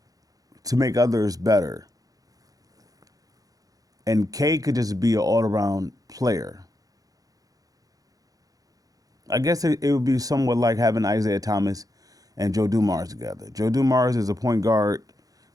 make others better. And Cade could just be an all-around player. I guess it would be somewhat like having Isaiah Thomas and Joe Dumars together. Joe Dumars is a point guard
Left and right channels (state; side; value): late; left; 0.17 ms